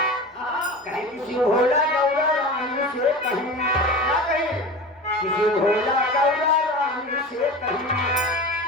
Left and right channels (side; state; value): both; normal; correlation 0.32